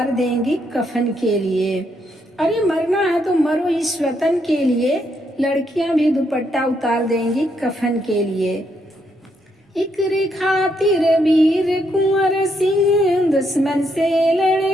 देंगी कफन के लिए। अरे मरना है तो मरो इस वतन के लिए, लड़कियां भी दुपट्टा उतार देंगी कफन के लिए। इकरे खातिर वीर कुंवर सिंह दुश्मन से लड़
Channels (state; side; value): normal; both; correlation 0.76